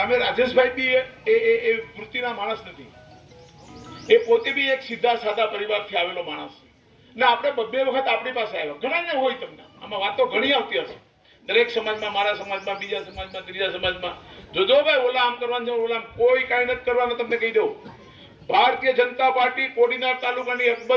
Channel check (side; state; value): both; identical; correlation 1.00